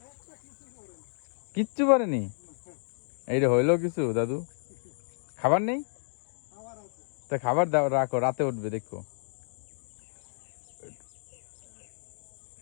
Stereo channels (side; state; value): right; silent; digital silence